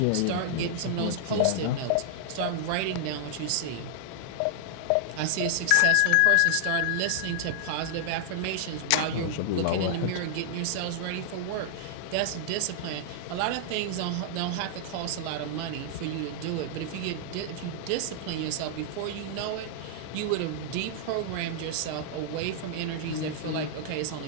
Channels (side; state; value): both; different; correlation -0.01